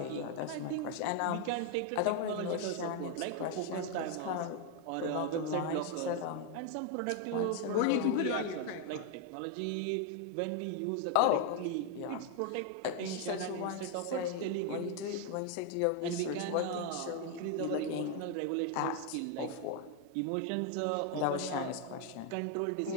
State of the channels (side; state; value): both; different; correlation 0.01